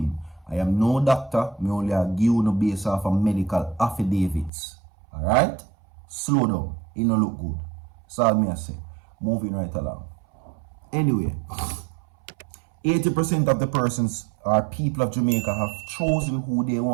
I am no doctor, me only give you no based off of medical affidavits. Alright? Slow down. It don't look good. That's all me I say. Moving right along. Anyway, 80% of the persons or people of Jamaica have chosen who they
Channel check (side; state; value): left; drops out; at 4.5 s